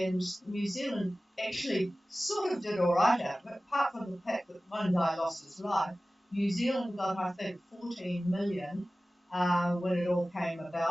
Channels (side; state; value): both; normal; correlation 0.97